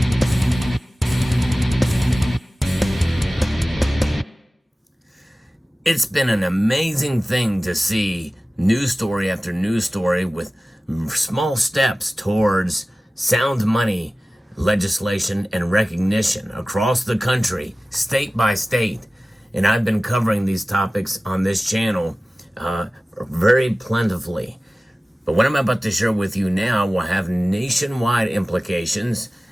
It's been an amazing thing to see news story after news story with small steps towards sound money legislation and recognition across the country, state by state. And I've been covering these topics on this channel very plentifully. But what I'm about to share with you now will have nationwide implications,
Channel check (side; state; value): both; normal; correlation 0.97